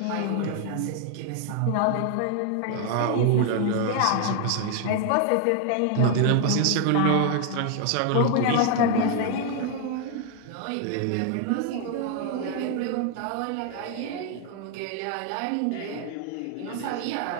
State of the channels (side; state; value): both; different; correlation 0.00